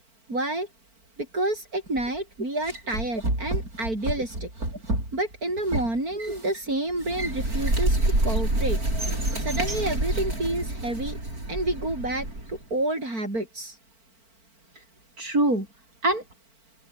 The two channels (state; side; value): late; left; 4.4 ms